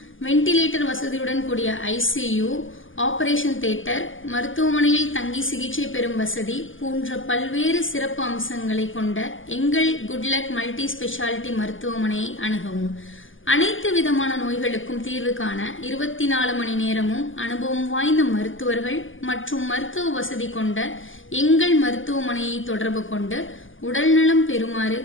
வென்டிலேட்டர் வசதியுடன் கூடிய ஐசியு, ஆபரேஷன் தியேட்டர், மருத்துவமனையில் தங்கி சிகிச்சை பெறும் வசதி போன்ற பல்வேறு சிறப்பு அம்சங்களை கொண்ட எங்கள் குட்லக் மல்டி ஸ்பெஷாலிட்டி மருத்துவமனையை அணுகவும். அனைத்து விதமான நோய்களுக்கும் தீர்வு காண 24 மணி நேரமும் அனுபவம் வாய்ந்த மருத்துவர்கள் மற்றும் மருத்துவ வசதி கொண்ட எங்கள் மருத்துவமனையை தொடர்பு கொண்டு உடல்நலம் பெறுமாறு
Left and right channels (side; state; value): right; late; 0.58 ms